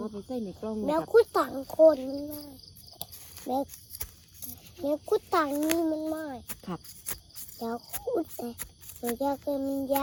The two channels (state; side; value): identical; both; correlation 1.00